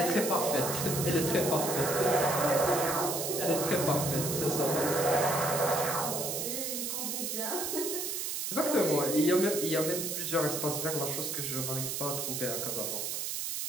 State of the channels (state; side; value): noise; right; hiss, 2 dB below the sound